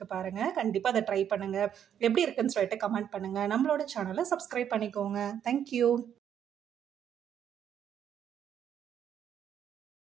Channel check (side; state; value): left; quieter; 9.2 dB